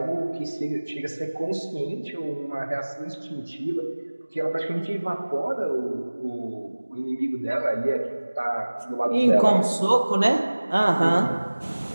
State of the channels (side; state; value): both; inverted; correlation -1.00